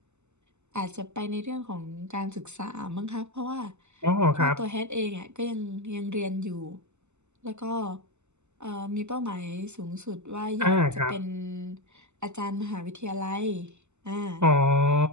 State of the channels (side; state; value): left; late; 0.83 ms